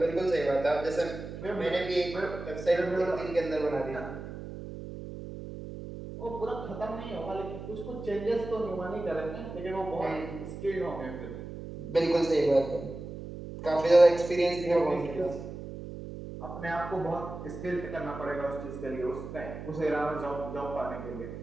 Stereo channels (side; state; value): right; noise; hum, 10 dB below the sound